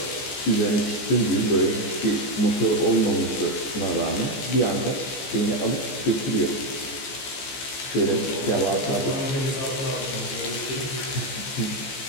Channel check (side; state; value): right; late; 15 ms